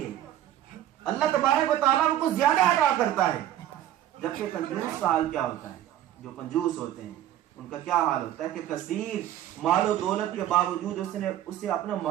ہے، اللہ تبارک و تعالیٰ ان کو زیادہ عطا کرتا ہے۔ جبکہ کنجوس کا حال کیا ہوتا ہے؟ جو کنجوس ہوتے ہیں ان کا کیا حال ہوتا ہے کہ کثیر مال و دولت کے باوجود اسے اپنا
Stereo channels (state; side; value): quieter; left; 12.2 dB